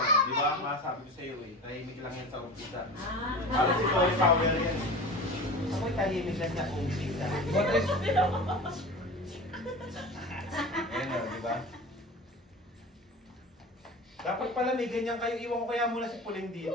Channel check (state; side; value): normal; both; correlation 0.33